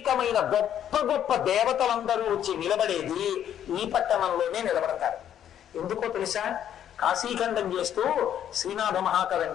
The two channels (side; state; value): right; quieter; 10.1 dB